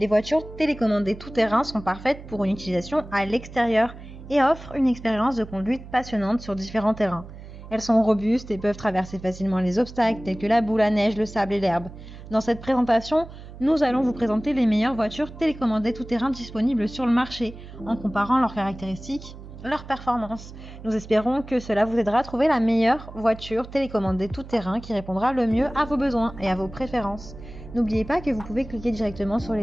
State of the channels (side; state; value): right; noise; hum, 15 dB below the sound